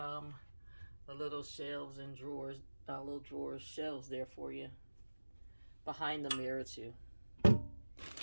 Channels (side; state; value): both; inverted; correlation -1.00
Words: little shelves and drawers, little drawers, shelves there for you behind the mirror too. And